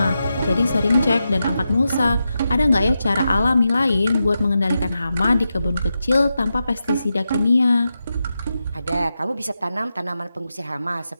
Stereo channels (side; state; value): both; inverted; correlation -0.89